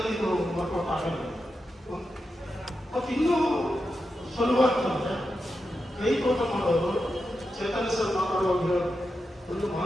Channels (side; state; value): both; normal; correlation 0.88